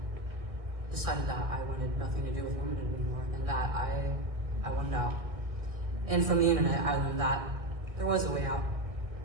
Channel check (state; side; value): late; left; 1.7 ms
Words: decided that I wanted nothing to do with womanhood anymore, and that I wanted out. And from the internet, I learned that there was a way out.